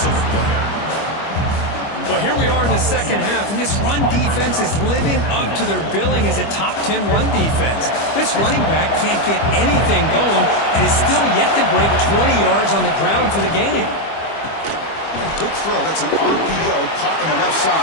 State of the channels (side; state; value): right; late; 25 ms